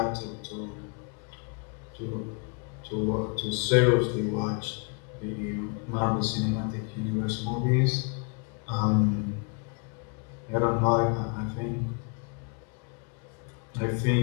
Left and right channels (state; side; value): quieter; right; 36.9 dB